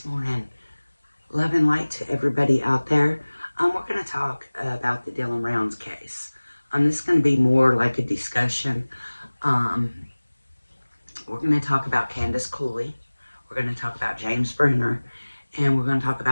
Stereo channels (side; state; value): both; inverted; correlation -1.00